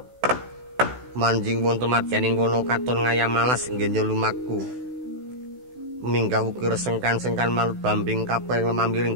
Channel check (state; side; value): late; left; 16 ms